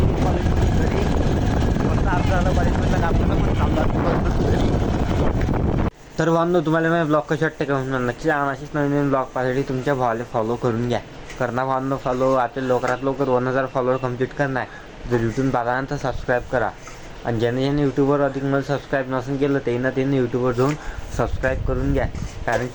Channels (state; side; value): identical; both; correlation 1.00